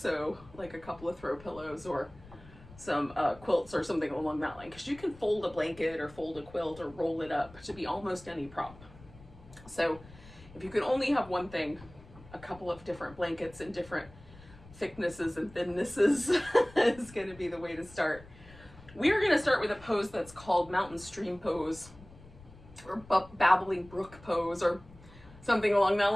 like a couple of throw pillows or some quilts or something along that line, because you can fold a blanket or fold a quilt or roll it up to be almost any prop. So if you can only have one thing, a couple of different blankets in different thicknesses and thinnesses is going to be the way to start. We are going to start with a pose that's called Mountain Stream Pose or Babbling Brook Pose or something along that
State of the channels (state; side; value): noise; left; rumble, 21 dB below the sound